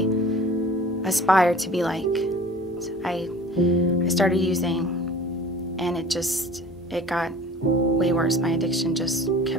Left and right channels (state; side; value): normal; both; correlation 0.44